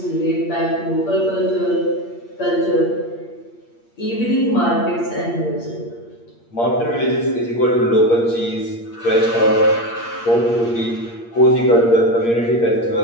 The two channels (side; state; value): right; late; 8.6 ms